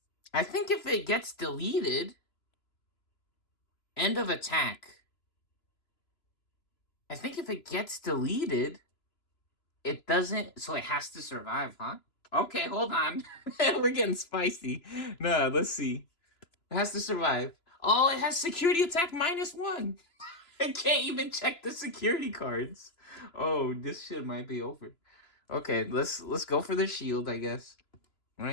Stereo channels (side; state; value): right; late; 3.0 ms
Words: I think if it gets deleted, end of attack. I think if it gets deleted, it doesn't. So it has to survive, huh? Okay, hold on. We're getting spicy. No, let's see. It has to survive. Oh, it has security attack -1. I can't even check the security cards. Oh, this shit might be over. Okay, let's go for the shield, I guess.